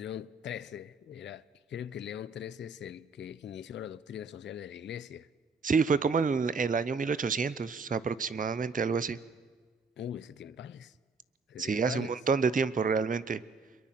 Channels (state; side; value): quieter; left; 4.0 dB